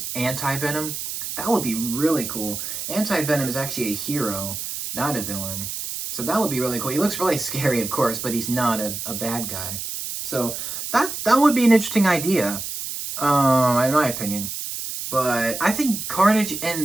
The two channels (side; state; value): right; noise; hiss, 6 dB below the sound